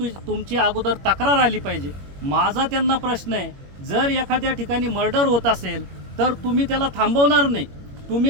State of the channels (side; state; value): left; late; 21 ms